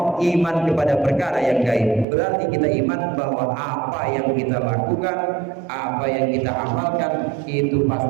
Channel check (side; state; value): left; drops out; at 2.1 s